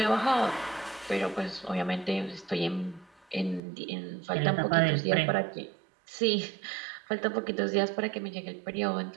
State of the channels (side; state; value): left; drops out; at 3.6 s